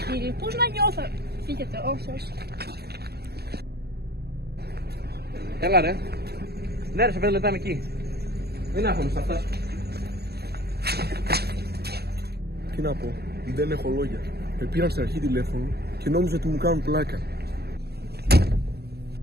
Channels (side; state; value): left; late; 0.47 ms